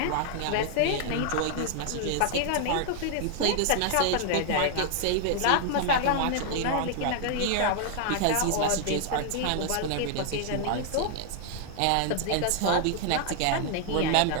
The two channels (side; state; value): both; different; correlation 0.00